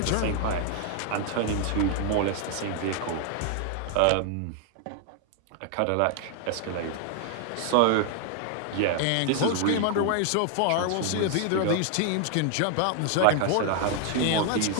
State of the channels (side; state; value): both; different; correlation 0.00